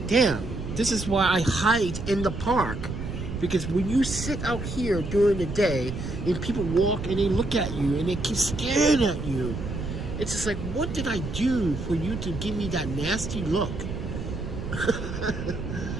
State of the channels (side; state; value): right; noise; rumble, 6 dB below the sound